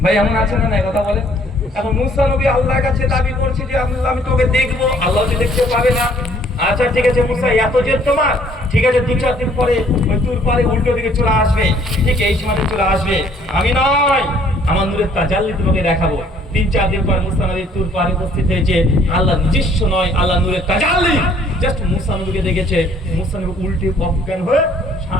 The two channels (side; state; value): both; normal; correlation 0.61